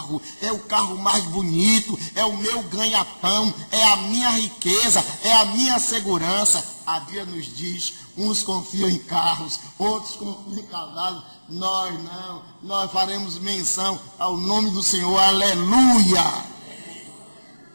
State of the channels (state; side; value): inverted; both; correlation -1.00